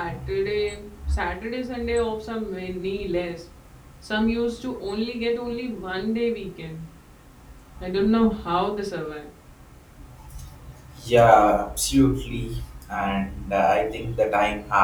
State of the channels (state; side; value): identical; both; correlation 1.00